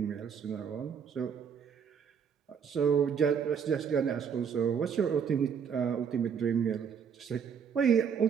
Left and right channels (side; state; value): left; quieter; 7.1 dB